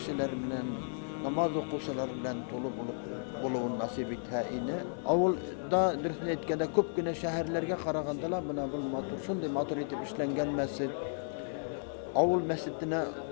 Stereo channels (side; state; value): right; silent; 55 dB below the other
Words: bilen, namaz okuşular bilen dolu buluğun nasip ettiğini. Avulda etkede köp güne şehirlerge karagandalar buna şunday matur etip işlengen mescit. Avul mescidine